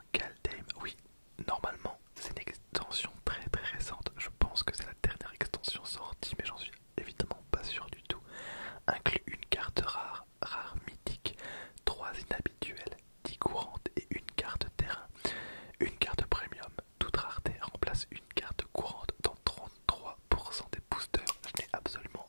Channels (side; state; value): both; inverted; correlation -1.00